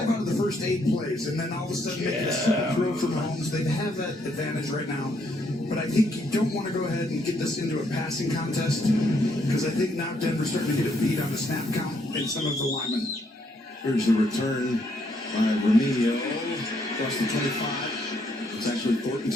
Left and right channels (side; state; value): both; normal; correlation 0.72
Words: of the first 8 plays, and then all of a sudden make a super throw for Mahomes. They have that advantage right now, but I think don't want to go ahead and get this into a passing contest because I think now Denver's starting to get a beat on the snap count and some of the linemen. Here's the return by Remigio across the 25. It's actually Thornton